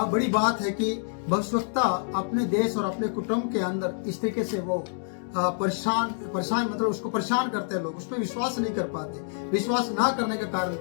बात है कि भविष्यवक्ता अपने देश और अपने कुटुंब के अंदर इस तरीके से वो परेशान मतलब उसको परेशान करते हैं लोग, उस पर विश्वास नहीं कर पाते। विश्वास ना करने का कारण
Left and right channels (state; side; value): silent; right; digital silence